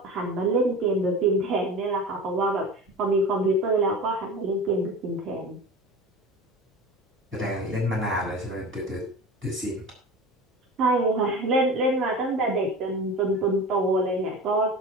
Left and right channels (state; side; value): normal; both; correlation 0.33